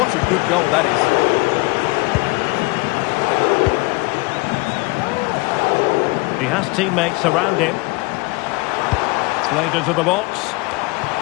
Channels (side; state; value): right; quieter; 25.7 dB